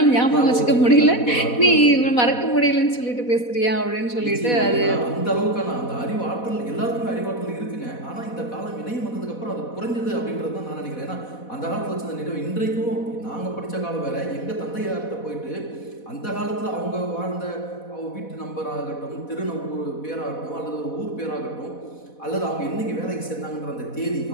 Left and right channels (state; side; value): late; right; 4.1 ms